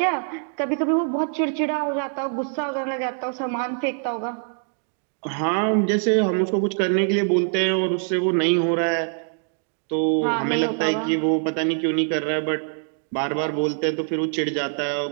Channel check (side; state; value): left; silent; 58 dB below the other